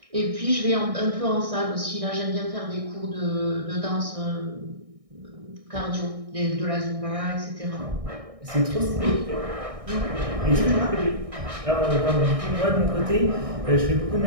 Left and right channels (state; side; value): late; left; 1.6 ms